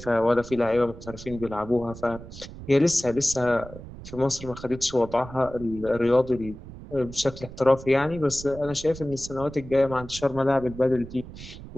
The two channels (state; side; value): noise; right; rumble, 14 dB below the sound